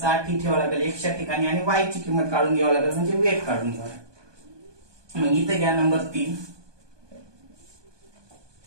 ही ठेवावं लागेल एक्सच्या ठिकाणी, आणि वाय ची किंमत काढून घ्यावं लागेल म्हणजे वेट काढून घ्यावं लागेल. मग इथे घ्या number 3,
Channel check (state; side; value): late; left; 1.2 ms